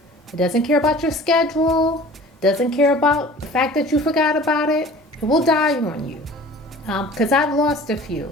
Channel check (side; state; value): both; normal; correlation 0.44